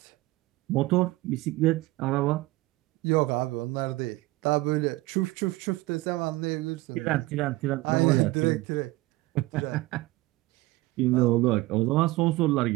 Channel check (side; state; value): left; quieter; 19.6 dB